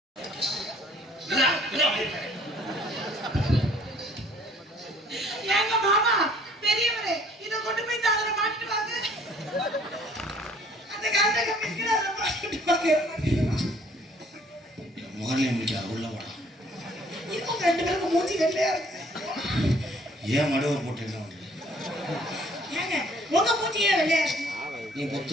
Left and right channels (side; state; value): both; normal; correlation 0.57